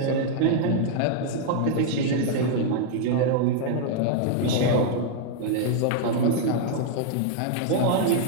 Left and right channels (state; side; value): different; both; correlation 0.00